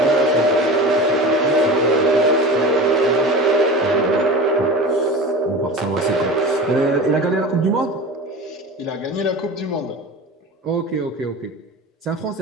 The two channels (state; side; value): normal; both; correlation 0.33